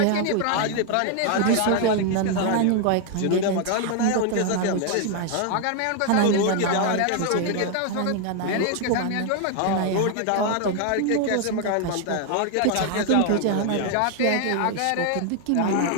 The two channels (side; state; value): both; different; correlation 0.00